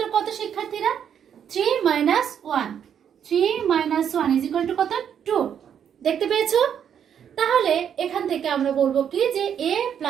কত শিক্ষার্থীরা? 3 - 1। 3 - 1 ইজ ইকুয়াল টু কত? 2। দেখতে পেয়েছো? তাহলে এখান থেকে আমরা বলবো কি যে a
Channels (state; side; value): quieter; left; 8.6 dB